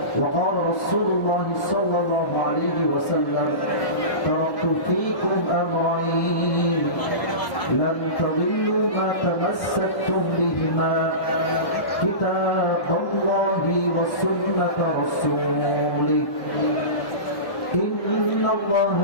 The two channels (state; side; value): late; right; 1.6 ms